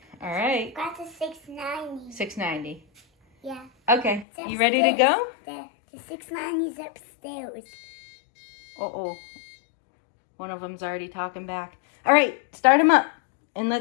All right. Got the 690. 690. Yeah. Okay. It's You ready to go? The 690 is upstairs. Uh-oh. One of them's already talking back. All right. Start them up. And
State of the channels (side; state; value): right; drops out; at 4.2 s